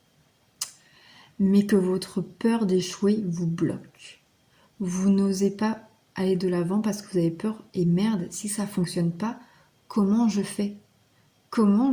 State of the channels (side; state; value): both; identical; correlation 1.00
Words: mais que votre peur d'échouer vous bloque. Vous n'osez pas aller de l'avant parce que vous avez peur. Et merde, si ça ne fonctionne pas, comment je fais? Comment